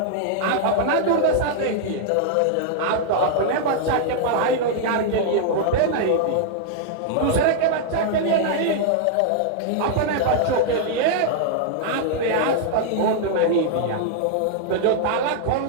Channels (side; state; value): both; different; correlation -0.01